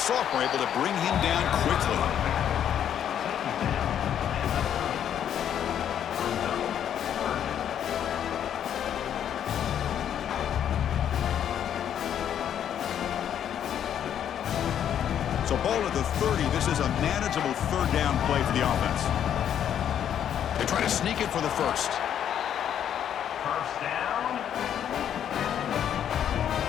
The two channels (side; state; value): right; quieter; 9.6 dB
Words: able to bring him down quickly. So ball at the 30. This is a manageable third down play for the offense. They try to sneak it for the first. First down.